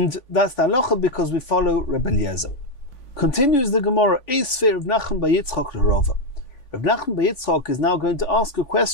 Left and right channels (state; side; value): late; right; 3.5 ms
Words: that's the halacha because we follow Rebbe Eliezer. Continues the Gemara, Eisfer Rav Nachman bar Yitzchak l'Rava. Rav Nachman bar Yitzchak is now going to ask a